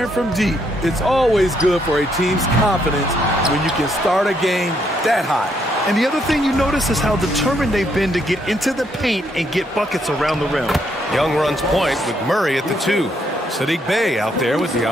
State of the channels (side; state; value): both; normal; correlation 0.74